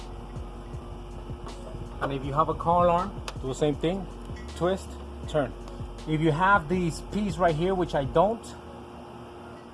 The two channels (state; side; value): identical; both; correlation 1.00